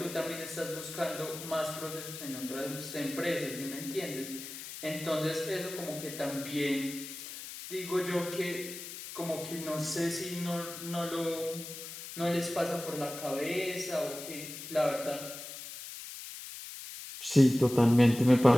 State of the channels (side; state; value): left; noise; hiss, 11 dB below the sound